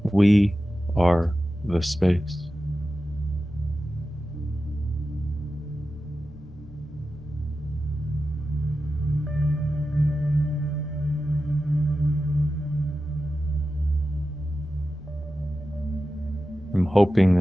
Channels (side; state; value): left; noise; rumble, 19 dB below the sound